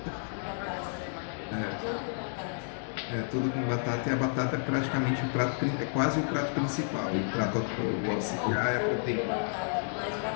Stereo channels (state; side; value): silent; right; digital silence